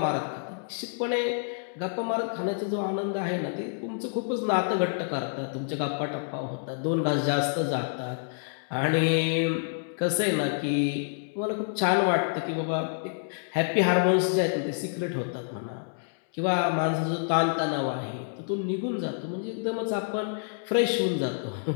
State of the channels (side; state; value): right; silent; digital silence